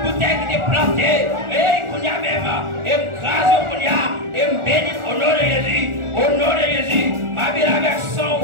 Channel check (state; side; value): late; left; 1.4 ms